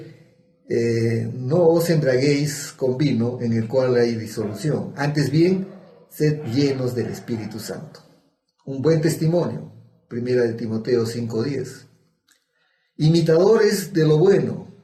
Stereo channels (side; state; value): both; identical; correlation 1.00